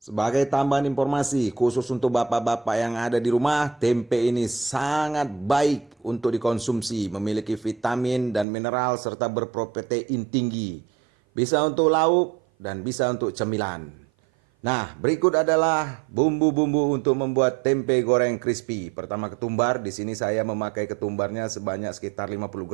Sebagai tambahan informasi khusus untuk bapak-bapak yang ada di rumah, tempe ini sangat baik untuk dikonsumsi, memiliki vitamin dan mineral serta berprotein tinggi. Bisa untuk lauk dan bisa untuk cemilan. Nah, berikut adalah bumbu-bumbu untuk membuat tempe goreng crispy. Pertama, ketumbar. Di sini saya memakai ketumbarnya sebanyak sekitar 50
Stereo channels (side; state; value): left; drops out; at 8.5 s